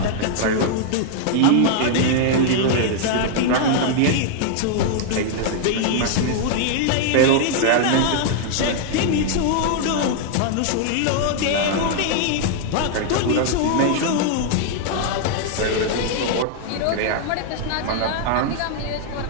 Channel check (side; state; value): both; different; correlation 0.00